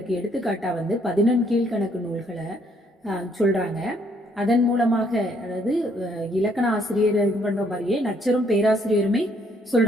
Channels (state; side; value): normal; both; correlation 0.68